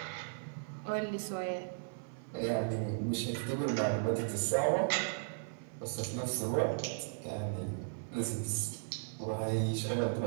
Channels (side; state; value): left; silent; 54 dB below the other